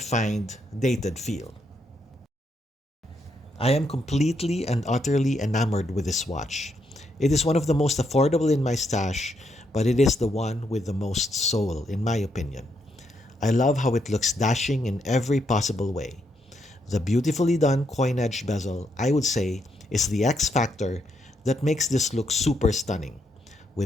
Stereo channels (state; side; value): normal; both; correlation 0.78